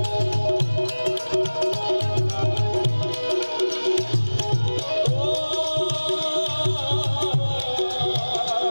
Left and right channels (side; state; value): both; inverted; correlation -1.00